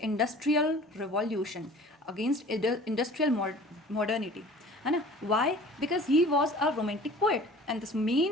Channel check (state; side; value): normal; both; correlation 0.46